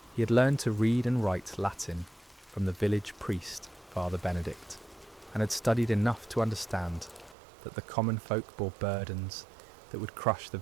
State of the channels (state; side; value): drops out; left; at 7.4 s